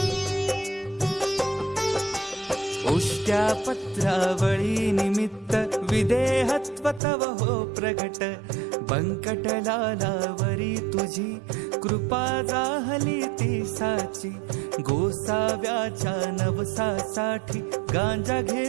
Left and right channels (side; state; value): left; drops out; at 7.0 s